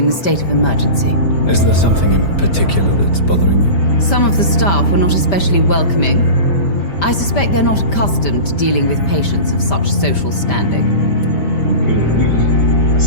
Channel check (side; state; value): right; late; 5.1 ms